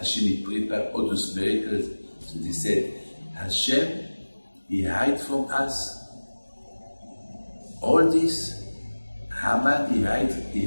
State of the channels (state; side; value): inverted; both; correlation -1.00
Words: prepared all those miracles. So they said, Hashem, He hid from us all this. Haman, he